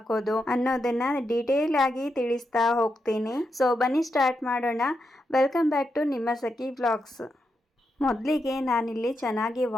ಅನ್ನೋದನ್ನು ಡೀಟೇಲ್ ಆಗಿ ತಿಳಿಸ್ತಾ ಹೋಗ್ತೀನಿ. ಸೊ ಬನ್ನಿ ಸ್ಟಾರ್ಟ್ ಮಾಡೋಣ. ವೆಲ್ಕಮ್ ಬ್ಯಾಕ್ ಟು ನಿಮ್ಮ ಸಖಿ ವ್ಲಾಗ್ಸ್. ಮೊದಲಿಗೆ ನಾನಿಲ್ಲಿ ಚೆನ್ನಾಗಿ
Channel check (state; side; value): normal; both; correlation 0.85